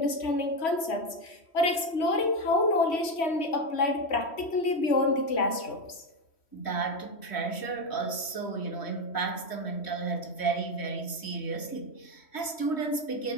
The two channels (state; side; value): late; right; 3.1 ms